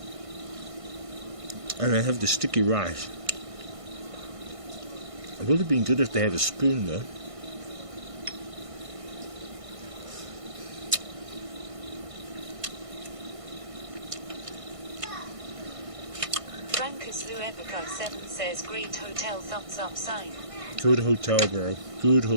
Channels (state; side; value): late; left; 1.5 ms